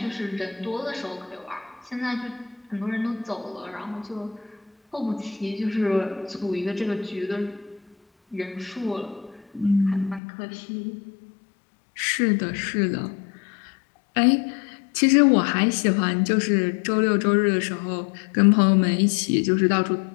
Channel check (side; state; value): right; drops out; at 10.2 s